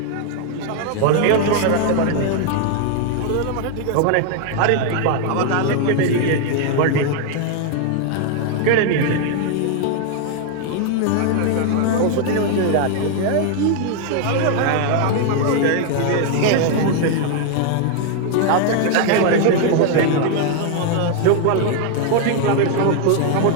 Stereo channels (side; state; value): both; different; correlation 0.00